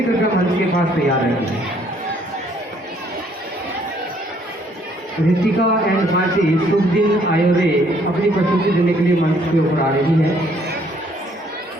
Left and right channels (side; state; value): both; normal; correlation 0.64